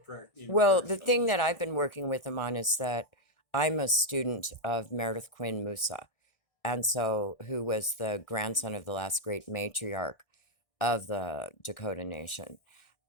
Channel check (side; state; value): right; late; 1.4 ms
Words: Well, the thing that I've been working with him on is that I'm a student of Meredith Quinn Musa, and so who was the grandson of the last great matriarch of the Dakota Nation.